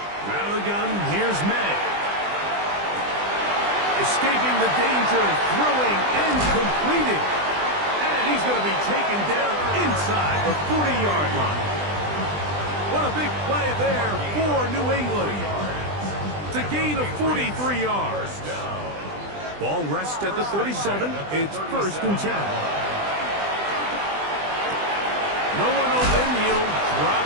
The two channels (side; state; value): left; late; 20 ms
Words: Out of the gun, here's May. Escaping the danger, throwing and completing. And he's going to be taken down inside the 40-yard line. What a big play there for New England. It's a gain of 43 yards. Ball rests at the 37. It's first and 10. No one open. He'll drop